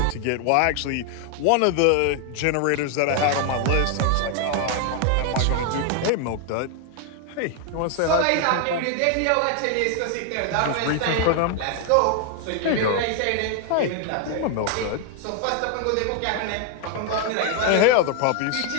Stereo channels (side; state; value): both; different; correlation 0.00